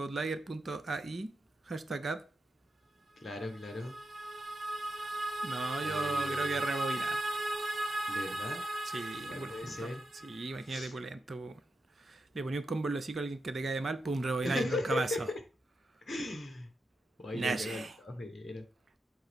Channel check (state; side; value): normal; both; correlation 0.87